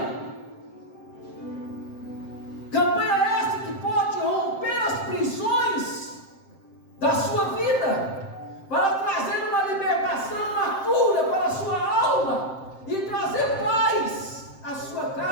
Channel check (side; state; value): right; late; 7.6 ms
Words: essa que pode romper as prisões da sua vida, para trazer uma libertação, uma cura para a sua alma, e trazer paz à sua